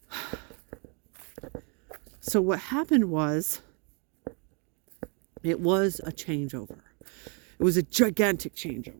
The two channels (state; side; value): quieter; left; 35.4 dB